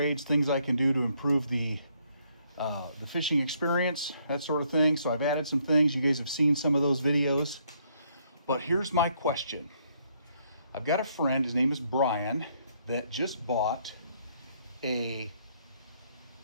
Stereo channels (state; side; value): inverted; both; correlation -0.70